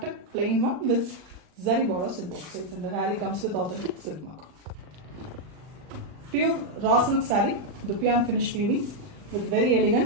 plain one with zari borders in both sides, and the saree comes with authentic silk mark. Pure raw silk saree, Dupion finish weaving with very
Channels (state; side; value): late; left; 40 ms